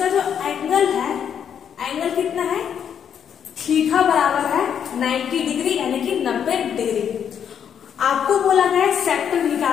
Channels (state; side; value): quieter; right; 8.3 dB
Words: जो एंगल है, एंगल कितना है? थीटा बराबर है 90 डिग्री यानी कि 90 डिग्री। आपको बोला गया है सेक्टर